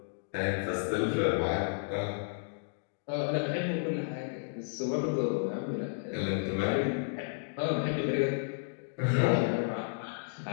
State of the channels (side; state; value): right; silent; digital silence